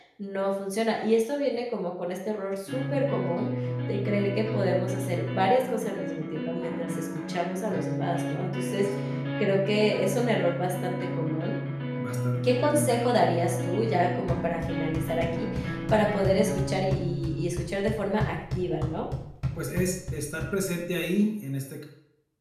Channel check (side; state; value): both; identical; correlation 1.00